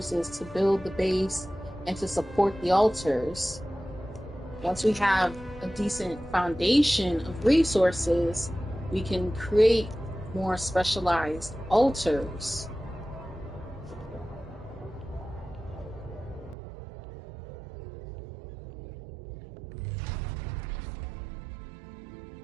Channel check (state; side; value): drops out; left; at 16.6 s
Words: to build the base and to support the altars. Once we have a decent foundation of resources, we can create more specialized altars.